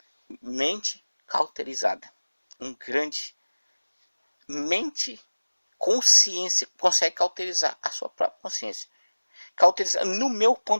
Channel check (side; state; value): both; inverted; correlation -1.00